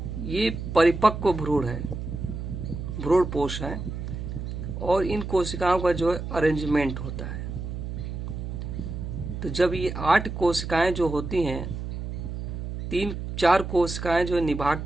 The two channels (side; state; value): right; noise; hum, 6 dB below the sound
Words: ये परिपक्व भ्रूण है, भ्रूण पोष है, और इन कोशिकाओं का जो है अरेंजमेंट होता है। तो जब ये 8 कोशिकाएं जो होती हैं, 4 कोशिकाएं जो है निभाग